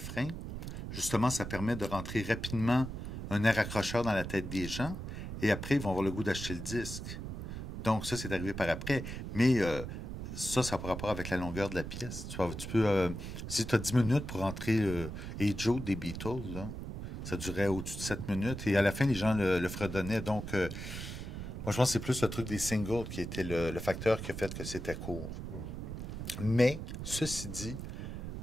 Justement, ça permet de rentrer rapidement un air accrocheur dans la tête des gens, et après, ils vont avoir le goût d'acheter le disque. Donc, ça, c'est arrivé par après. Mais ça n'a pas rapport avec la longueur de la pièce. Tu peux, si tu as 10 minutes pour rentrer Hey Joe des Beatles, là, ça durait au-dessus de 7 minutes. Et à la fin, les gens le fredonnaient. Donc, moi, je pense que c'est plus le truc des singles qui était le facteur qui a fait que c'était court. Mais, ceci dit,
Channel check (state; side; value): noise; right; rumble, 7 dB below the sound